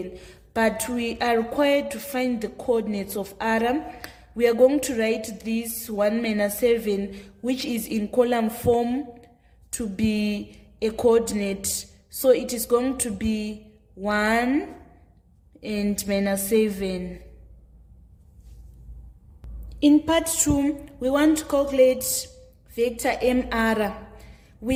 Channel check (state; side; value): identical; both; correlation 1.00